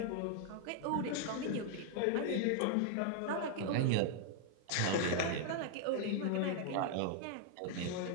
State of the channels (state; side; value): different; both; correlation 0.00